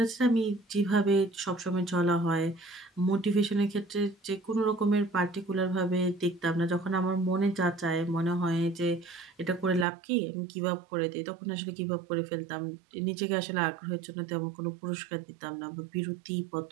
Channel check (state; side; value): drops out; left; at 9.9 s